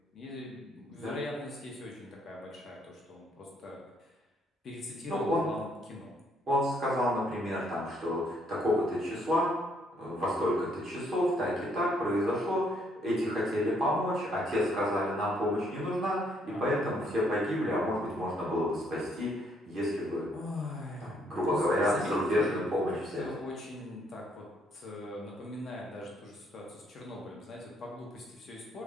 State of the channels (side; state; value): both; normal; correlation 0.69